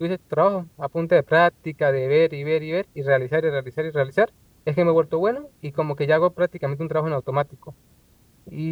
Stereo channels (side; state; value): both; identical; correlation 1.00